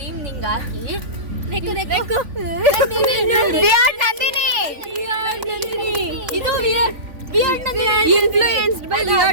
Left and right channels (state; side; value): late; left; 3.5 ms